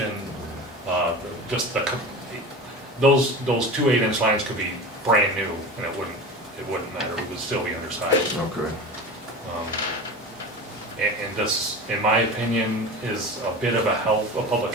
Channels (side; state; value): both; normal; correlation 0.31